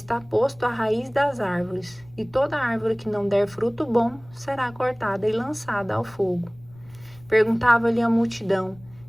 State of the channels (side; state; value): left; noise; rumble, 25 dB below the sound